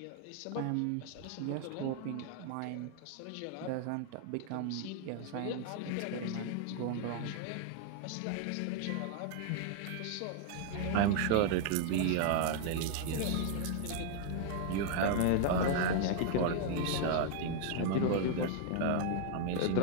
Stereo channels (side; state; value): both; different; correlation 0.00